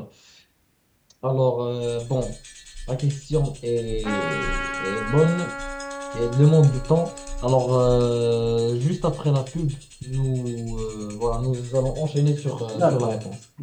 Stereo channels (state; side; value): identical; both; correlation 1.00